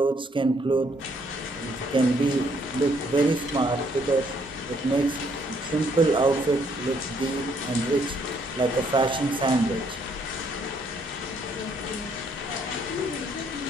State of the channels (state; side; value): normal; both; correlation 0.68